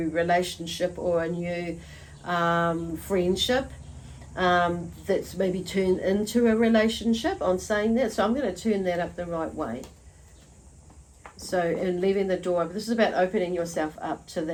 relationship or a new friendship that's maybe turned into a relationship. I'm saying that, so I'm going to turn that up the right way. So, and leaving the door open. This is about opening yourself up to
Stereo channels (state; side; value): identical; both; correlation 1.00